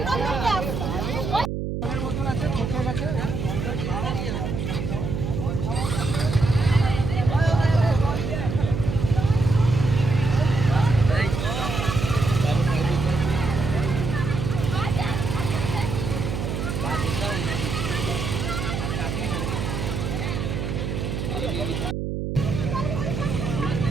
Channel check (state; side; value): noise; right; hum, 3 dB below the sound